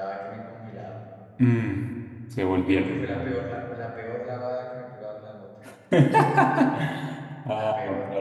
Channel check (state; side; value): identical; both; correlation 1.00